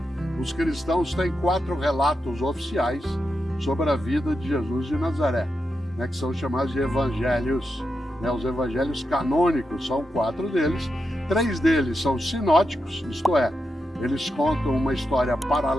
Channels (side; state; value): both; normal; correlation 0.87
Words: os cristãos têm 4 relatos oficiais sobre a vida de Jesus de Nazaré, que são chamados de evangelhos. Os evangelhos canônicos são 4 deles, 3 deles são sinóticos, isto é, eles contam uma história